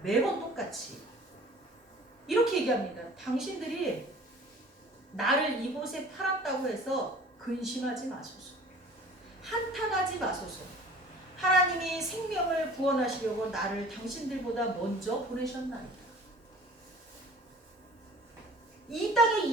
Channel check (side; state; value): both; normal; correlation 0.47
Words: 매번 똑같이. 이렇게 얘기합니다. 당신들이 나를 이곳에 팔았다고 해서 근심하지 마소서. 한탄하지 마소서. 하나님이 생명을 구원하시려고 나를 당신들보다 먼저 보내셨나이다. 이 땅에